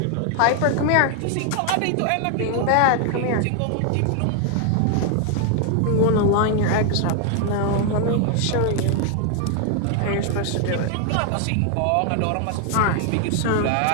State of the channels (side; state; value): both; different; correlation 0.00